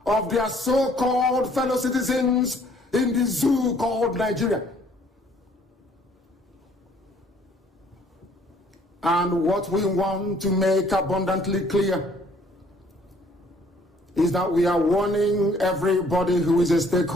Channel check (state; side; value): normal; both; correlation 0.61